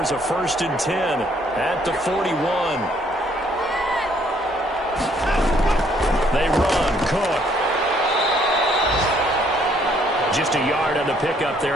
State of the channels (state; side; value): normal; both; correlation 0.65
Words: a 1st and 10 at the 41. They run. Cook. Just a yard on the pickup